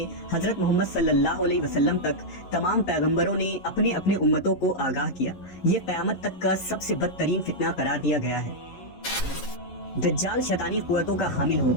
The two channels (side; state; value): right; late; 11 ms